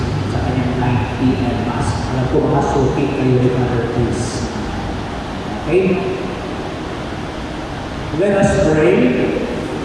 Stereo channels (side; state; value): both; identical; correlation 1.00